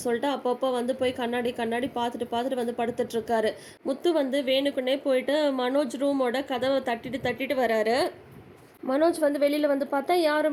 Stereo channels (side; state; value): both; identical; correlation 1.00